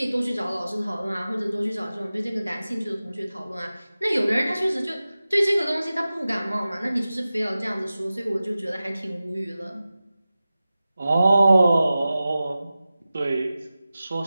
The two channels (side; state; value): both; inverted; correlation -0.95